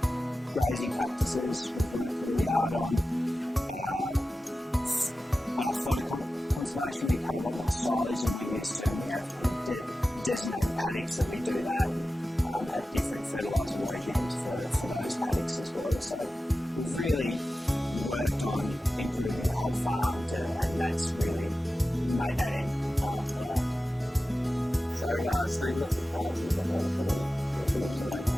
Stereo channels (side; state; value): both; normal; correlation 0.94